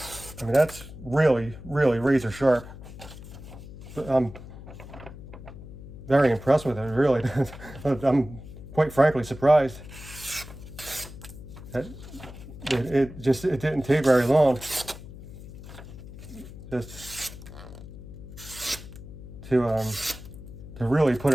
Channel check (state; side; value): noise; left; hum, 14 dB below the sound